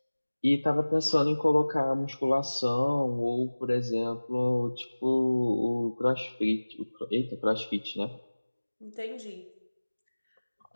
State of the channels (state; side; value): inverted; both; correlation -1.00